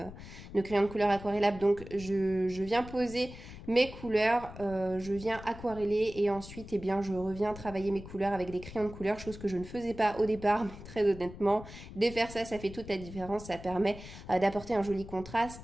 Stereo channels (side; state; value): left; noise; rumble, 14 dB below the sound